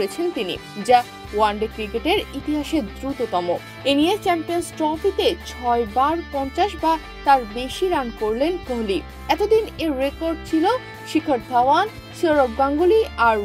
তিনি, যা ওয়ানডে ক্রিকেটের ইতিহাসে দ্রুততম। এ নিয়ে চ্যাম্পিয়ন্স ট্রফিতে ৬ বার ৫০ বা তার বেশি রান করলেন কোহলি। এতদিন এর রেকর্ড ছিল শিখর ধাওয়ান, সৌরভ গাঙ্গুলি আর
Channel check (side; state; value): both; identical; correlation 1.00